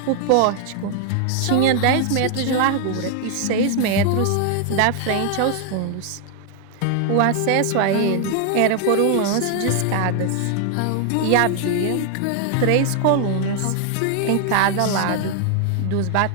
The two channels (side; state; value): both; different; correlation 0.00